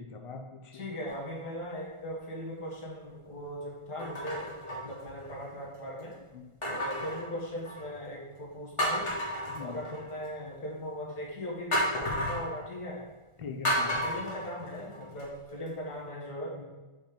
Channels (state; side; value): late; left; 1.4 ms